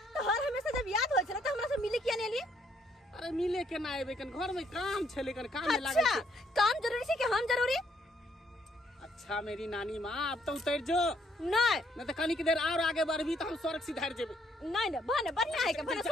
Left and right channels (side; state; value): both; normal; correlation 0.70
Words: तो हर हमेशा जब याद हो छला तो हमरा से मिले किया नहीं लिए? अरे मिले के ना आबे, कन घर में काम छले, कन काम में लागे अच्छा छे। काम जरूरी है कि हम जरूरी? अच्छा मेरी नानी माँ, अब तो उतर जो, नहीं नहीं तो कनी की देर और आगे बढ़बी तो हम स्वर्ग सिधार जेबे। नहीं ना बने बढ़िया है के बने जा,